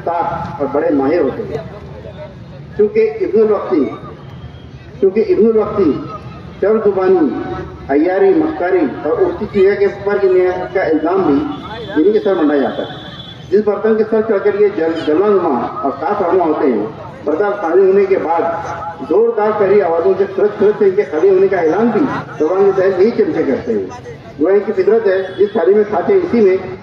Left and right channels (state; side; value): identical; both; correlation 1.00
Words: ताक और बड़े माहिर होते हैं। क्योंकि इब्नुल वक्ती चर जुबानी, अय्यारी, मक्कारी और उल्टी चीज़ों के ऊपर का इल्ज़ाम भी इन्हीं के सर मंडाया जाता है। जिस बर्तन के सर चढ़कर ये जलवानुमा और साफ रहनुमा होते हैं, बर्तन खाली होने के बाद जोरदार कड़ी आवाज़ों से तुरंत से इनके खाली होने का ऐलान भी जबान के तहत यही चमचे करते हैं। वो इनकी फितरत है, जिस थाली में खाते इसी में